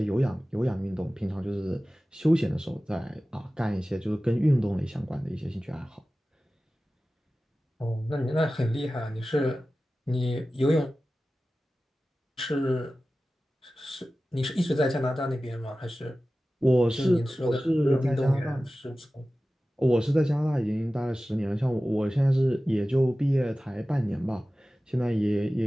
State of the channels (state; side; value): normal; both; correlation 0.96